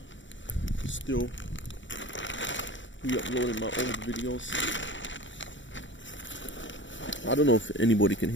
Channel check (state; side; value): late; right; 0.55 ms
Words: Still re-uploading my old videos. I don't know if anybody can